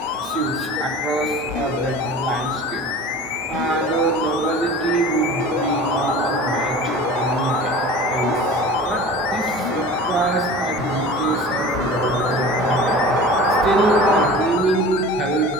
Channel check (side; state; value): both; normal; correlation 0.39